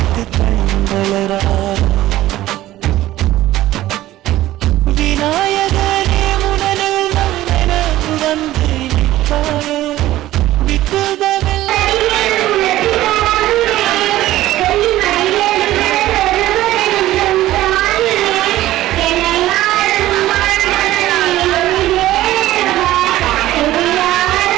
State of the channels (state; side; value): quieter; left; 15.2 dB